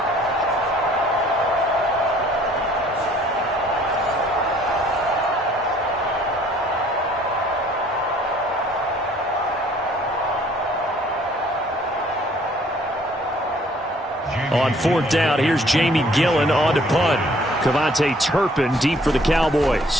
On 4th down, here's Jamie Gillen on to punt. Turpin deep for the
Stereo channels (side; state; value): both; normal; correlation 0.58